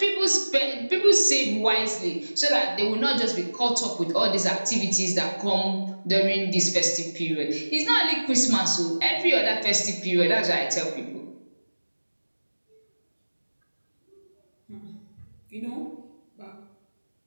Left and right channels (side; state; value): both; inverted; correlation -1.00